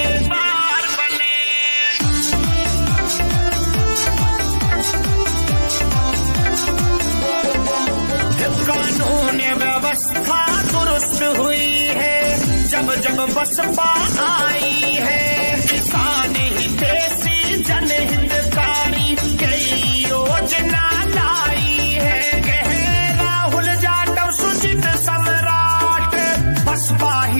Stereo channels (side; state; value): both; inverted; correlation -1.00